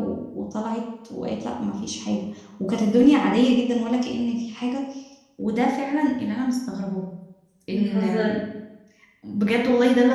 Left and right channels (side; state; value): both; identical; correlation 1.00